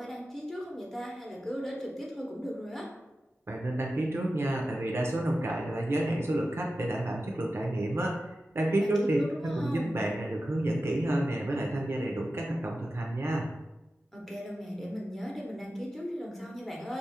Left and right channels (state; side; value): normal; both; correlation 0.93